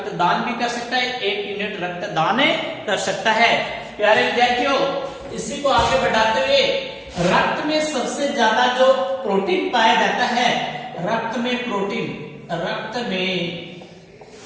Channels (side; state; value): both; identical; correlation 1.00